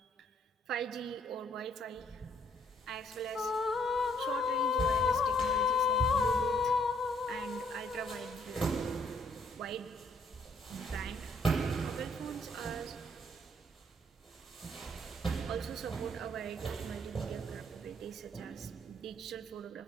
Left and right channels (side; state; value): both; normal; correlation 0.66